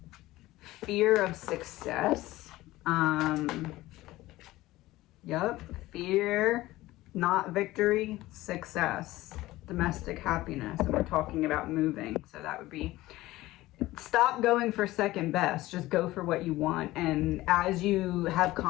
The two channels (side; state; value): right; quieter; 17.5 dB